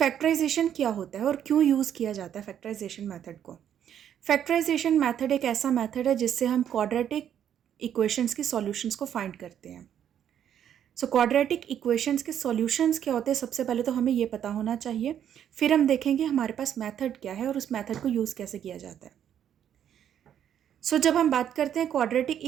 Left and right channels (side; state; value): left; quieter; 9.6 dB